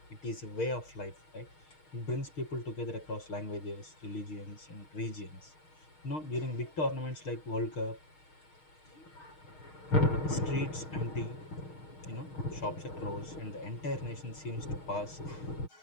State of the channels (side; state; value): right; late; 6.4 ms